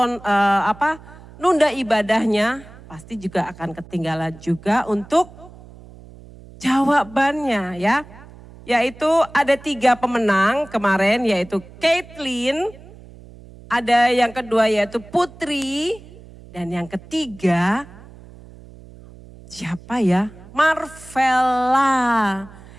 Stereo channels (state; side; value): noise; right; hum, 20 dB below the sound